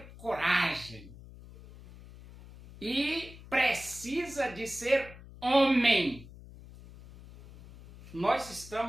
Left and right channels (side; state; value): left; noise; hum, 18 dB below the sound